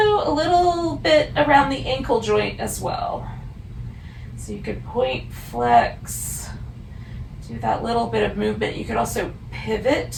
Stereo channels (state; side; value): identical; both; correlation 1.00